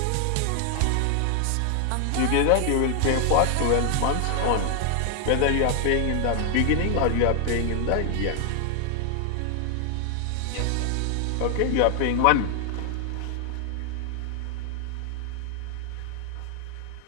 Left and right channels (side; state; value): both; different; correlation 0.00